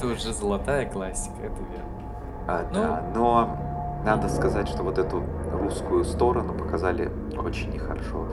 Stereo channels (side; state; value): both; identical; correlation 1.00